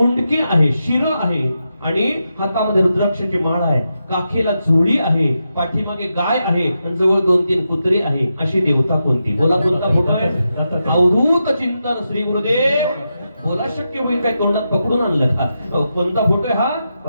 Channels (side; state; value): both; inverted; correlation -0.87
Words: आहे, शिर आहे आणि हातामध्ये रुद्राक्षाची माळ आहे. काखेला चोळी आहे, पाठीमागे गाय आहे आणि जवळ 2-3 कुत्री आहे. अशी देवता कोणती? बोला. कोणता फोटो आहे? अवधूत चिंतन श्री गुरुदेव. बोला. शक्य होईल काय? तोंडात पकडून आणलं का? कोणता फोटो आहे हा?